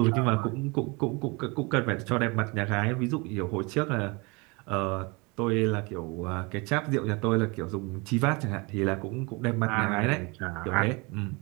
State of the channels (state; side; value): quieter; left; 28.0 dB